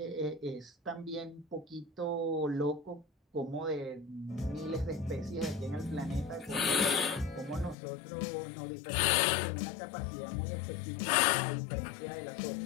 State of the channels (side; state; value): right; drops out; at 7.8 s